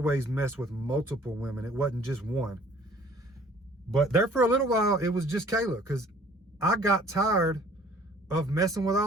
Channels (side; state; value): both; normal; correlation 0.54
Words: mess with multiple women. It wasn't just one. But there for a little while, it was just Kayla because I got tired of messing with